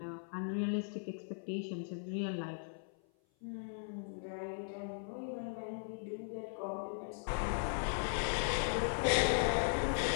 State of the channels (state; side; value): silent; right; 52 dB below the other